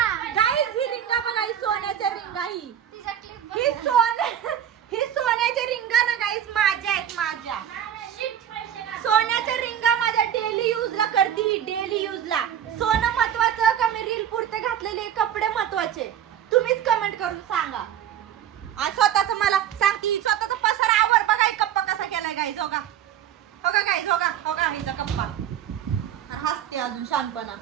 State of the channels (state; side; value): quieter; left; 9.9 dB